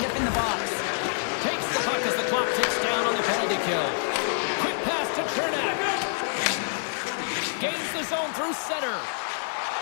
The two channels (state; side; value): silent; right; digital silence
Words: up in the box. Takes the puck as the clock ticks down on the penalty kill. Quick pass to Chernak. Gains the zone through center.